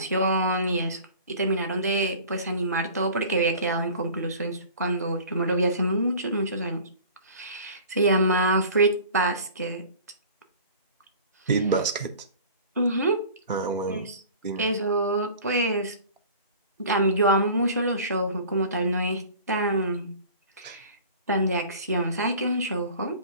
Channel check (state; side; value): inverted; both; correlation -0.43